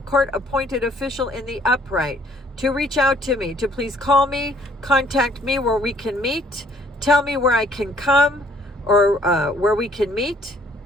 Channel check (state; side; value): normal; both; correlation 0.62